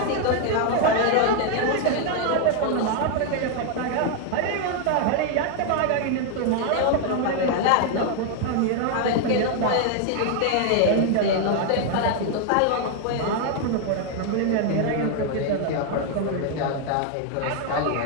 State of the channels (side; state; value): both; different; correlation 0.00